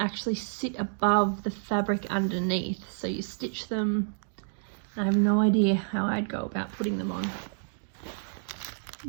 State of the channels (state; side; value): silent; left; digital silence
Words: sit above the fabric underneath, so you stitch them. I have no idea how I'd go about putting them on.